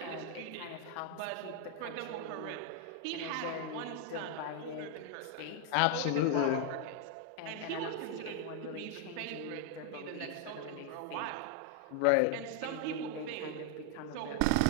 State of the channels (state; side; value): different; both; correlation 0.00